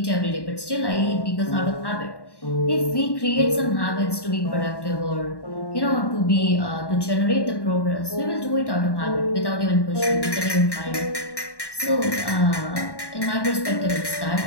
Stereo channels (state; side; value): late; right; 1.1 ms